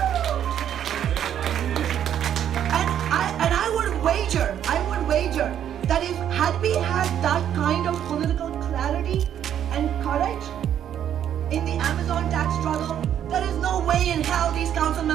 And I would wager that if had we had that kind of political clarity and courage in the Amazon tax struggle, there is no way in hell these council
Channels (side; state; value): left; quieter; 9.9 dB